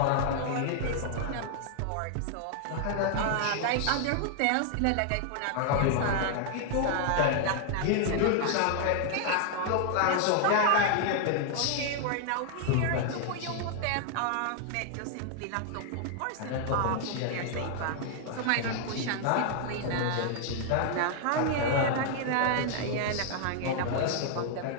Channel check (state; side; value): different; both; correlation 0.00